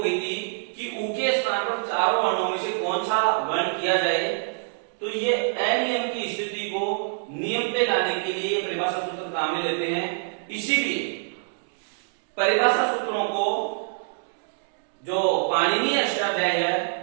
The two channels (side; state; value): left; silent; digital silence